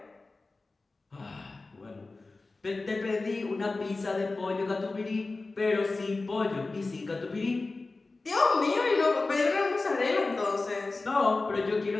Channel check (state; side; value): quieter; right; 3.5 dB